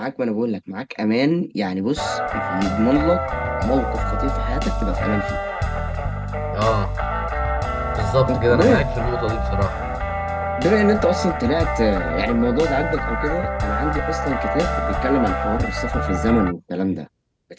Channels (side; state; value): both; identical; correlation 1.00